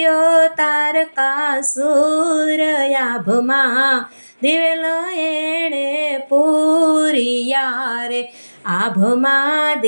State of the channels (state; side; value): inverted; both; correlation -1.00